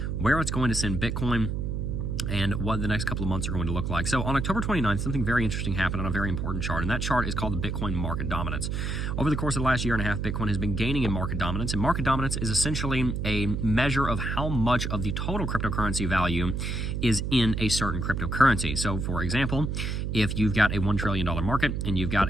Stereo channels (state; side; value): noise; right; hum, 2 dB below the sound